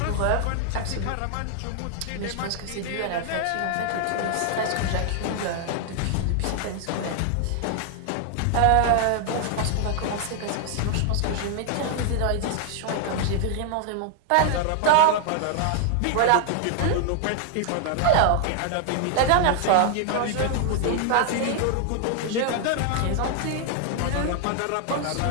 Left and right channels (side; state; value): both; different; correlation 0.00